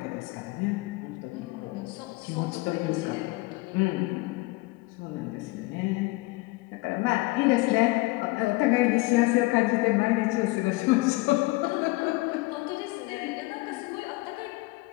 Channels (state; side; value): quieter; right; 22.5 dB